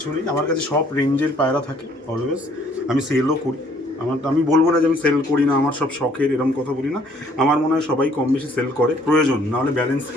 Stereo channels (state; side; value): normal; both; correlation 0.62